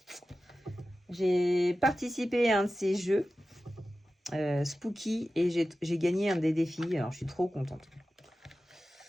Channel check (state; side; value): normal; both; correlation 0.94